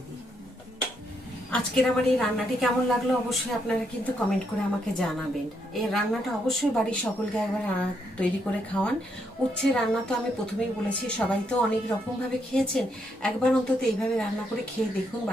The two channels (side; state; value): both; normal; correlation 0.77